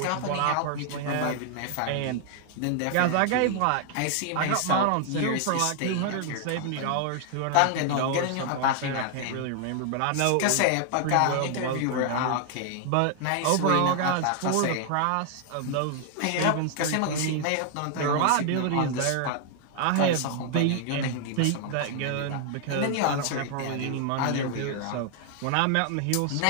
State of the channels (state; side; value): different; both; correlation 0.00